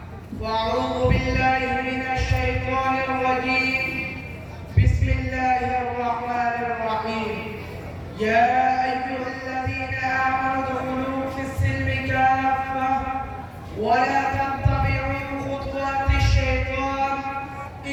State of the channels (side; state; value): both; identical; correlation 1.00